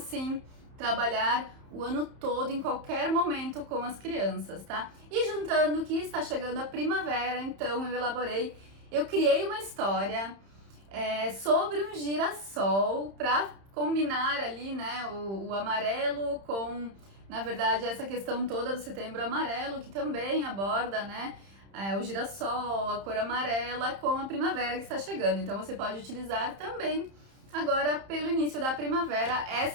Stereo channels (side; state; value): left; late; 31 ms